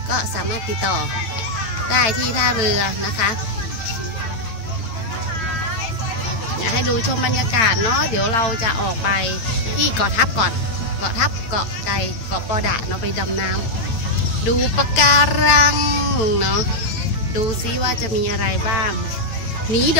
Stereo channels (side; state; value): right; late; 9.0 ms